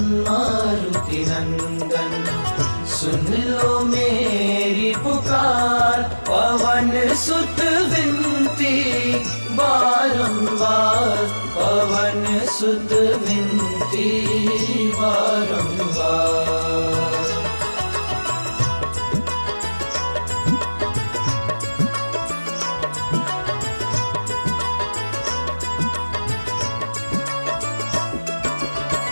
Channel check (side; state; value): both; inverted; correlation -1.00